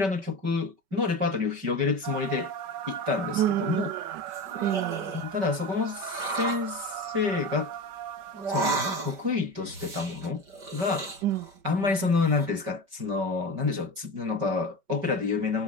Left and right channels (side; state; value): left; late; 5.2 ms